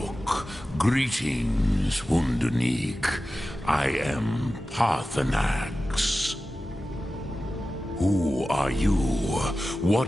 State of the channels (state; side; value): normal; both; correlation 0.94